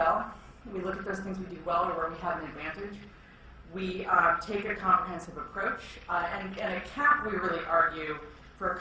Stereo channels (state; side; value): identical; both; correlation 1.00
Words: We look at those things we do well or where we have an advantage. We take a comprehensive approach. And at CAP, we really argue for a